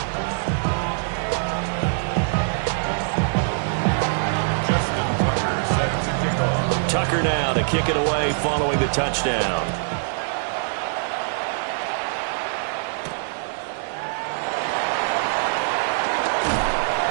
Tucker now to kick it away following the touchdown.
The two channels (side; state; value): left; silent; digital silence